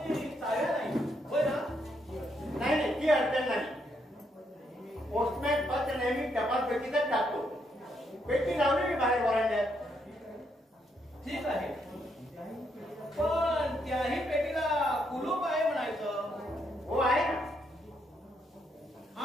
चाव्या नाही. होय ना. नाही नाही ती अडचण नाही. पोस्टमॅन पत्र नेहमी टपाल पेटीतच टाकतो. पेटी लावली मी बाहेर वरांड्यात. ठीक आहे पण त्याही पेटीला कुलूप आहे म्हणायचं. हो आहे ना.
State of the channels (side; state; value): both; normal; correlation 0.76